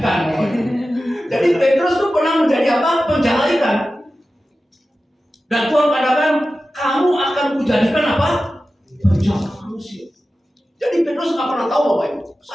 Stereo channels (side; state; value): both; normal; correlation 0.94